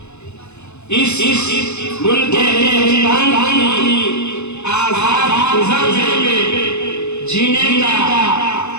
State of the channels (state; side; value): late; right; 0.81 ms